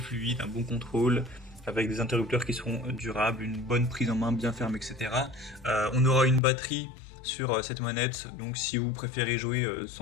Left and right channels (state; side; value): drops out; right; at 6.4 s